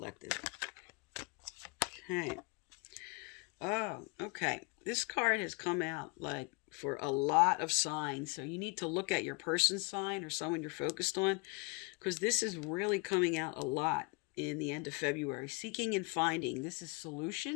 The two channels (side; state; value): right; quieter; 29.6 dB